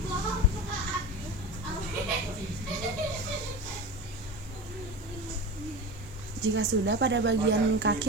Jika sudah pada bagian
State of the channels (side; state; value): both; normal; correlation 0.28